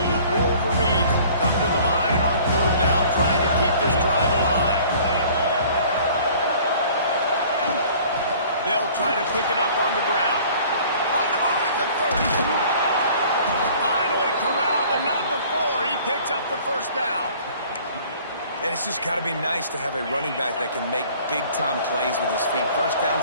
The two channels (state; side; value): inverted; both; correlation -0.51